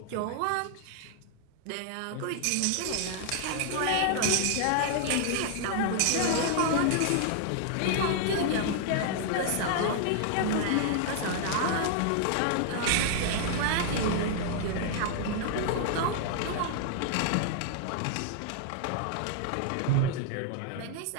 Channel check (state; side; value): different; both; correlation 0.00